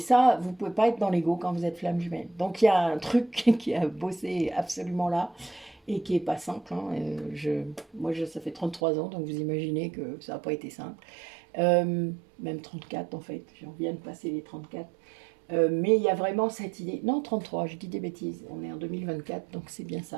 vous ne pouvez pas être dans l'ego quand vous êtes flamme jumelle. Donc il y a un truc qui a bossé absolument là et qui n'est pas simple. Moi, ça fait 33 ans, donc vous imaginez que ça n'a pas été simple. Même 34 en fait, j'en viens de passer les 34. Mais il y a vraiment cette idée. Non, 33, je dis des bêtises. On est en 2024, donc c'est bien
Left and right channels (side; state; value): left; drops out; at 8.8 s